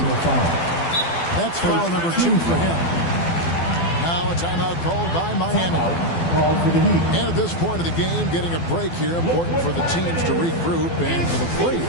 That's foul number 2 for him. Now a timeout called by Miami. Called for the Heat. And at this point of the game, getting a break here, important for the teams to regroup. And for the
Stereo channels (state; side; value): late; right; 12 ms